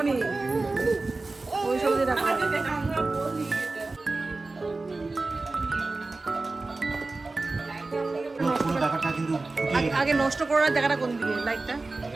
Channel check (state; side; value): quieter; left; 3.4 dB